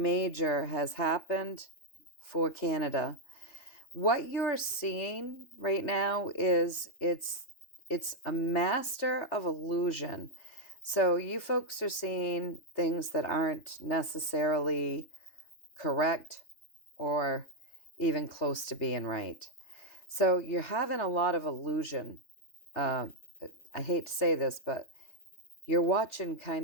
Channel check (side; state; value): right; late; 3.4 ms